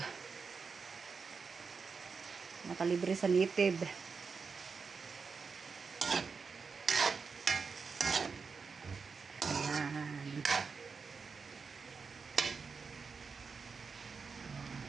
nakalibre sa native.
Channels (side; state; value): left; quieter; 5.2 dB